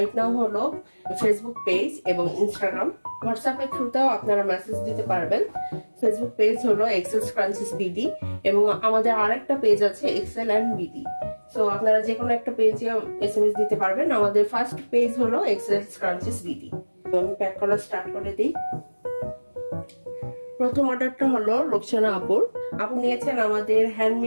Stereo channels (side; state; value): both; inverted; correlation -1.00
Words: নাও হলো ফেসবুক পেজ এবং ইনস্টাগ্রাম। হোয়াটসঅ্যাপের থ্রুতেও আপনারা মেসেজ দিতে পারবেন। ফেসবুক পেজ হলো এক্সেল স্ক্রাঞ্চিস বিডি এবং আমাদের আরেকটা পেজ আছে এক্সেল অ্যান্ড বিডি। সো আপনারা যে কোনো একটা পেজে এসএমএস দিতে পারবেন। আমাদের ফার্স্ট পেজ হলো এক্সেল স্ক্রাঞ্চিস বিডি। আমি প্যাক করা স্টার্ট করে দিই। প্রথম অর্ডারটা হলো রোকসানা আপুর। আপু নিয়েছেন আমাদের